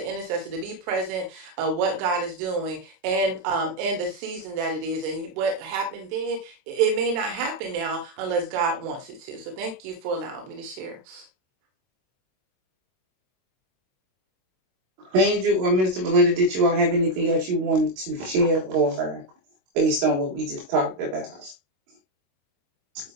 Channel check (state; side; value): late; left; 22 ms